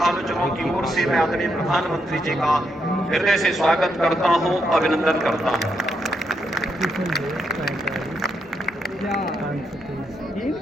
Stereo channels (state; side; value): normal; both; correlation 0.80